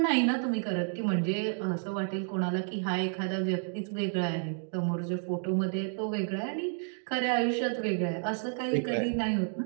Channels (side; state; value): left; silent; 57 dB below the other